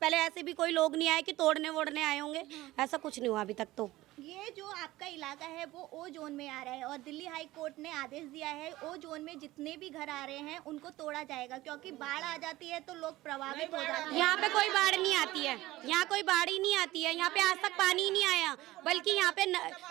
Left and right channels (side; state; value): left; quieter; 17.5 dB